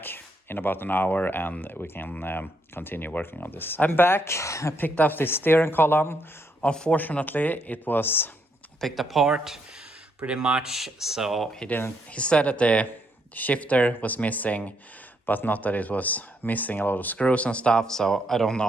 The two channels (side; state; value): both; normal; correlation 0.75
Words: in about an hour, and we can continue working on this. I'm back. I picked up the steering column. Unfortunately, it was picked apart pretty much, so he said that the shifter was missing, but not that it was missing a lot of screws and stuff. So I don't